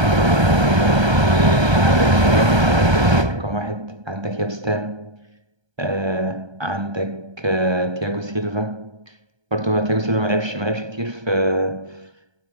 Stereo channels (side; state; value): left; late; 1.3 ms